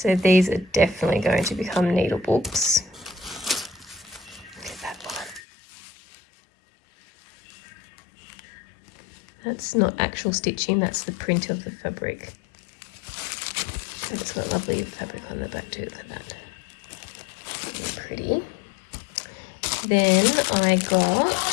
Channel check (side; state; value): right; drops out; at 5.4 s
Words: these are definitely going to become needle books. Look at that one. That's not actual stitching, that's the print of the fabric. But it's got lovely fabric on the back too. Look at that. Really pretty. Then I got